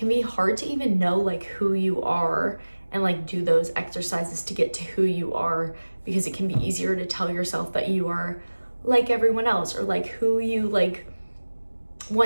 be hard to even know like who you are and like do those exercises to get to who you are, because it can be easier to tell yourself that you are like everyone else or like who you like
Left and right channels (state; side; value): inverted; both; correlation -1.00